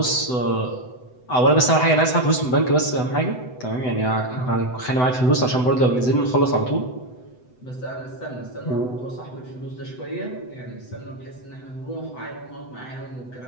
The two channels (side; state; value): right; late; 7.9 ms